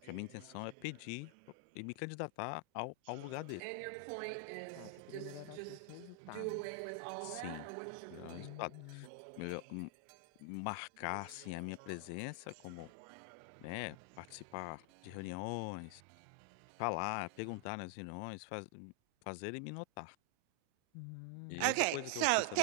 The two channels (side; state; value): both; different; correlation 0.00